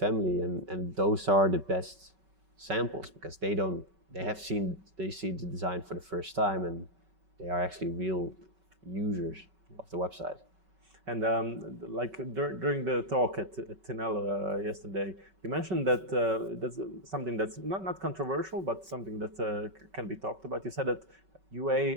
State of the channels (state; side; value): late; left; 5.3 ms